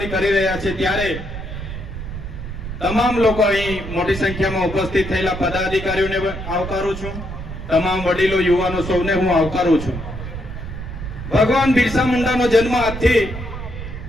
કરી રહ્યા છીએ। ત્યારે તમામ લોકો અહીં મોટી સંખ્યામાં ઉપસ્થિત થયેલા પદાધિકારીઓને આવકારું છું, તમામ વડીલો, યુવાનો સૌને હું આવકારું છું। ભગવાન બિરસા મુંડાનો જન્મ આજથી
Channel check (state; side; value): noise; right; rumble, 8 dB below the sound